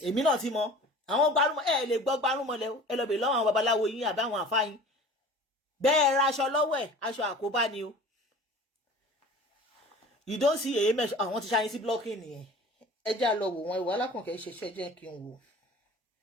èmi náà ti mọ àwọn gbárùmọ̀ ẹ lè gbọ́ gbárùmọ̀lẹ̀ ẹ lọ bèèrè lọ́wọ́ àwọn babaláwo yín àbí àwọn àfáà yín bẹ́ẹ̀ ra aṣọ lọ́wọ́ ẹ̀ aṣọ àkóbá ni o you don't see èyí mẹ́ṣọ́ àwọn ti ṣáyín sí blocking nìyẹn ẹ jẹ́ àlọ́ wò wọn ìwà alákànkẹ́ ṣe ṣọ́ ẹ jẹ́ kí n wò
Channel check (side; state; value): both; normal; correlation 0.42